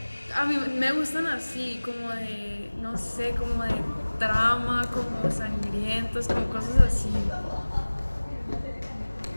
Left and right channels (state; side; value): inverted; both; correlation -1.00